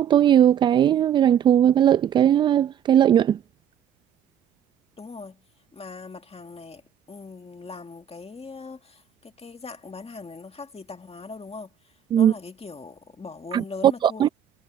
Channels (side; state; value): left; quieter; 9.5 dB